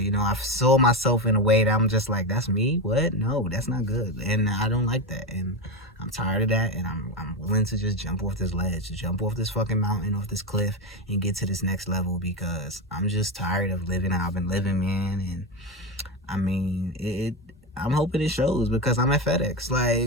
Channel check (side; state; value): both; normal; correlation 0.15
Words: You know, I saw myself in a way that I'm just like, that's me? What? No, that's not good. And I don't like that. And I'm tired of that, and I'm willing to just jump off this ledge, jump off this fucking mountain, off this cliff, and get to this next level because I'm just tired of living how I've been living, man. And I mean, I'm hoping it shows because I'm at FedEx.